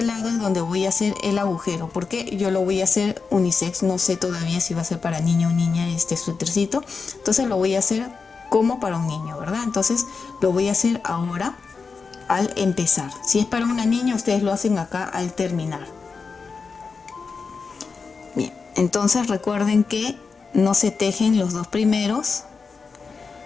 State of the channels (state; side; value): quieter; right; 4.9 dB